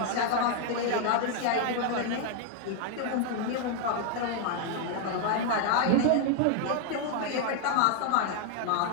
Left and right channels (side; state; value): both; different; correlation 0.00